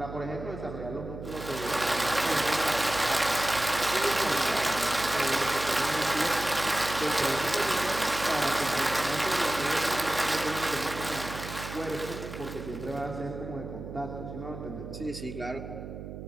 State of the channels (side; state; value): right; noise; hum, 10 dB below the sound